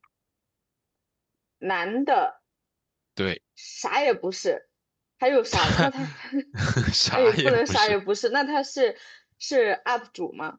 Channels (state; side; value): identical; both; correlation 1.00